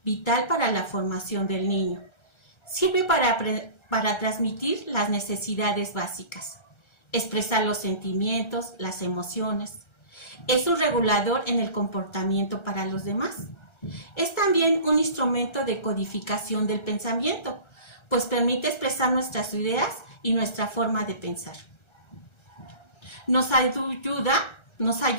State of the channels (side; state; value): right; late; 1.3 ms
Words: vital para la formación del niño. Sirve para transmitir las necesidades básicas, expresar los sentimientos, las emociones. Es un regulador en el comportamiento para los demás. Es también un instrumento de codificación del pensamiento, pues permite expresar nuestras ideas y nuestra forma de pensar. Nos ayuda